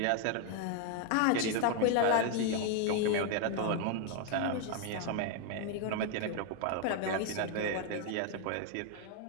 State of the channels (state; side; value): different; both; correlation 0.01